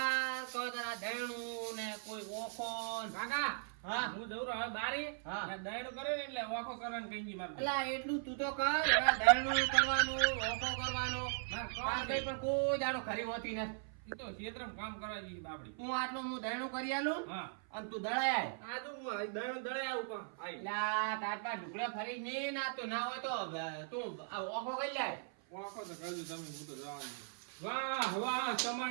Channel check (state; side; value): silent; left; 52 dB below the other